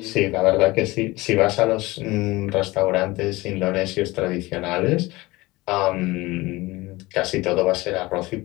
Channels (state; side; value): quieter; right; 20.9 dB